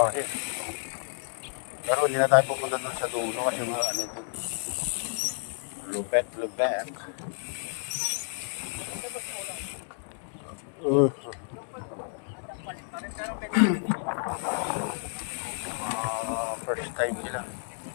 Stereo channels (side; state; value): right; silent; 58 dB below the other